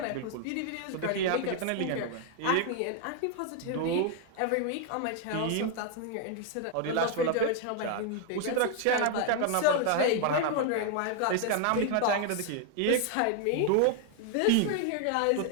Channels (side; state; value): both; different; correlation 0.00